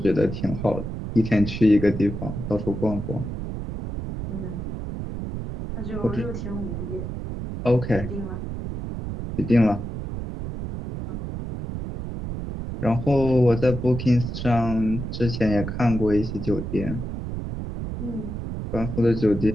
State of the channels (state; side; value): noise; right; rumble, 6 dB below the sound